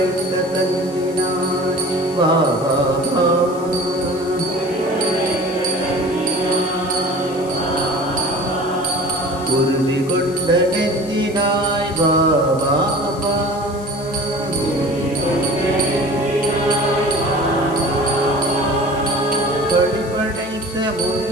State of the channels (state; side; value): noise; left; hiss, 20 dB below the sound